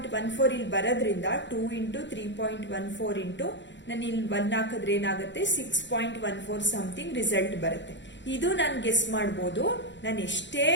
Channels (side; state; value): right; late; 0.53 ms